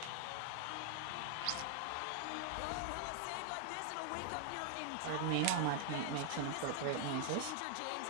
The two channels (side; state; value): both; different; correlation 0.00